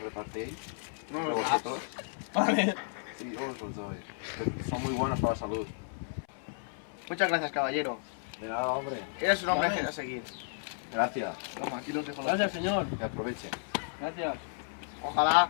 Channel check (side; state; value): right; silent; 56 dB below the other